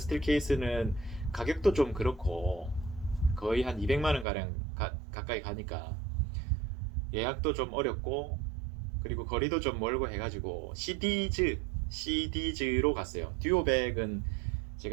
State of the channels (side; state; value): left; drops out; at 4.2 s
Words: 케이스는 가격도 좀 그렇고 거의 한 200만 원 가량 가까이 가니까 예약도 좀 어렵고, 그리고 거리도 좀 멀고 해가지고 시디즈로 갔어요. 듀오백은